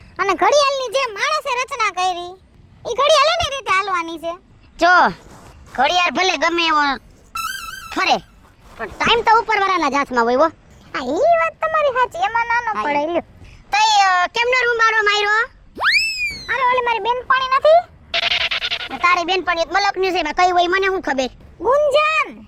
અને ઘડિયાળની જે માણસે રચના કરી, એ ઘડિયાળ એની રીતે હાલવાની છે. જો ઘડિયાળ ભલે ગમે એવો ફરે, પણ ટાઈમ તો ઉપરવાળાના જ હાથમાં હોય. હા, ઈ વાત તમારી સાચી, એમાં નાનો પડે. લ્યો તઈ કેમનો રૂમારો માર્યો? અરે ઓલી મારી બેનપણી નથી, તારી બેનપણી મલકની છે, કઈ હોય મને શું ખબર. ગુંજન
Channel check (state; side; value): identical; both; correlation 1.00